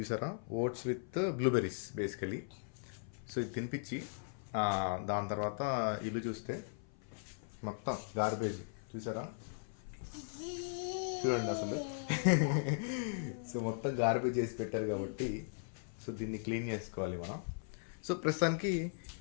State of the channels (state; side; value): silent; right; 52 dB below the other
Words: oats with blueberries basically. So ఇది తినిపించి దాని తర్వాత ఇల్లు చూస్తే మొత్తం గార్బేజ్ చూసారా, చూడండి అసలు. సో మొత్తం గార్బేజ్ చేసి పెట్టారు కాబట్టి సో దీన్ని క్లీన్ చేసుకోవాలి మనం. సో ప్రస్తుతానికి